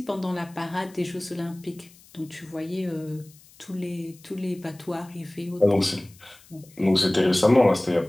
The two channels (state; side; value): noise; left; hiss, 25 dB below the sound